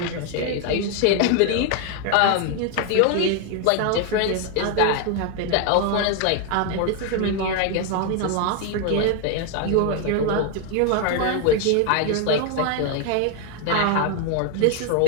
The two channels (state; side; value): different; both; correlation 0.01